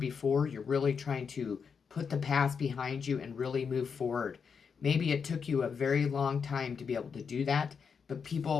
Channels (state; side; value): quieter; right; 6.1 dB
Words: You're really trying to put the past behind you and really move forward. Maybe it took you a very long time to be able to do that, but